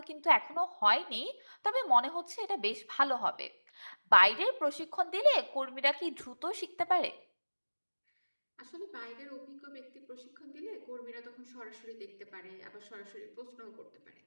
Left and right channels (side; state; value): both; inverted; correlation -1.00